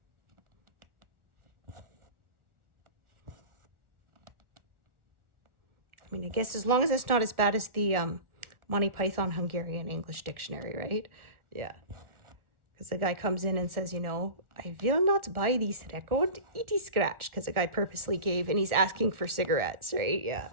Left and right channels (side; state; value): left; late; 1.4 ms